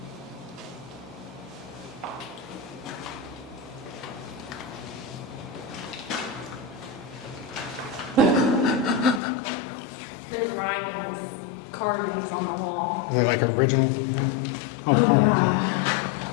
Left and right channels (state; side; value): drops out; right; at 9.2 s